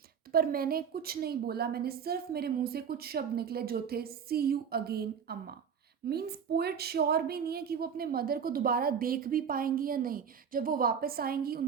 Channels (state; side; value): quieter; left; 7.2 dB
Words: पर मैंने कुछ नहीं बोला, मैंने सिर्फ मेरे मुंह से कुछ शब्द निकले जो थे सी यू अगेन अम्मा। मीन्स पोएट श्योर भी नहीं है कि वो अपने मदर को दोबारा देख भी पाएंगी या नहीं, जब वो वापस आएंगी